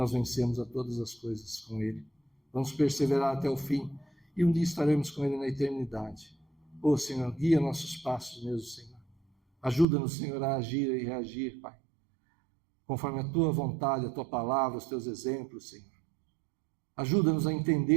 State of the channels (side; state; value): left; drops out; at 9.9 s